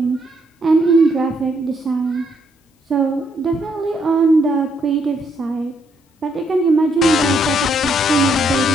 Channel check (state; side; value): normal; both; correlation 0.73